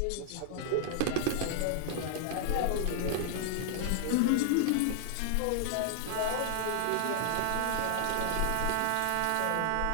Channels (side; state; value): both; different; correlation 0.00